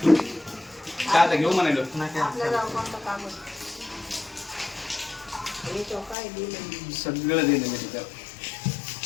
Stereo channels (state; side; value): drops out; right; at 6.2 s